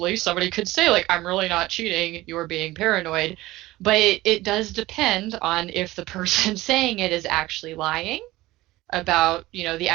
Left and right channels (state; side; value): quieter; left; 18.2 dB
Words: somebody could say like, I'm really not cheating, you're being paranoid. But it does depend on if the person saying it is actually lying about, the